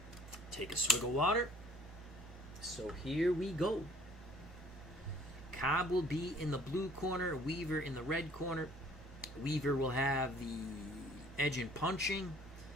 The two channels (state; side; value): normal; both; correlation 0.56